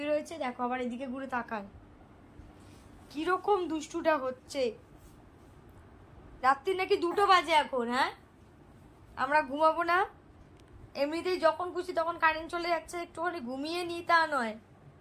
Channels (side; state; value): both; identical; correlation 1.00